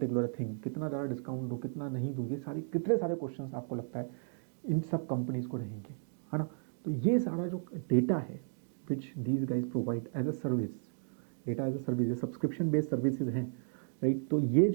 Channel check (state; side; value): silent; left; digital silence